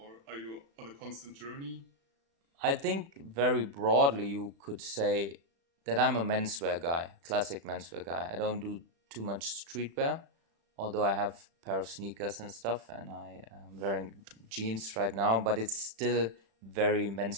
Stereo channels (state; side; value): late; left; 36 ms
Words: are you on a constant journey? I think very broadly you could say that I'm a menswear guy, classic menswear guy. I don't do too much streetwear, although I have a pair of sneakers and stuff, and I am wearing jeans right now, but it's still very